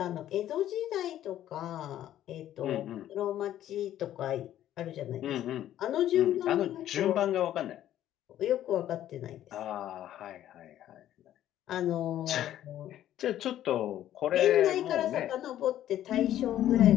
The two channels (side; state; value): right; quieter; 12.2 dB